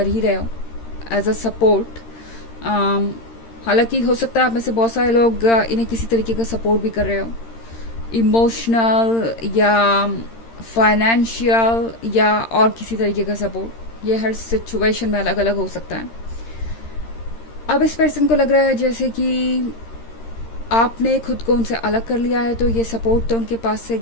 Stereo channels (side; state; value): right; late; 13 ms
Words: ही रहे हो एज अ सपोर्ट। हालांकि हो सकता है आप में से बहुत सारे लोग इन्हें किसी तरीके का सपोर्ट भी कर रहे हो, इमोशनल या फाइनेंशियल या और किसी तरीके का सपोर्ट। ये हर सिचुएशन में अलग अलग हो सकता है। अब इस पर्सन को लग रहा है जैसे कि आपने खुद को उनसे अलग कर लिया है, तो ये सपोर्ट तो उनके पास से